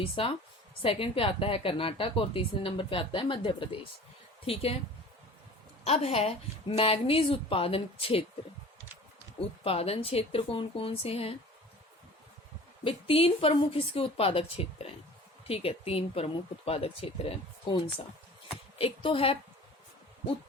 सेकंड पे आता है कर्नाटक और तीसरे नंबर पे आता है मध्य प्रदेश। ठीक है। अब है मैग्नीज उत्पादन क्षेत्र। उत्पादन क्षेत्र कौन कौन से हैं भाई? 3 प्रमुख इसके उत्पादक क्षेत्र हैं। ठीक है। 3 प्रमुख उत्पादक क्षेत्र हैं। कौन सा? एक तो है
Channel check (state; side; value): normal; both; correlation 0.43